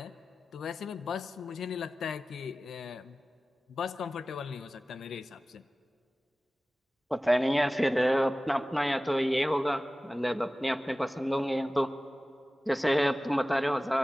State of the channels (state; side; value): normal; both; correlation 0.96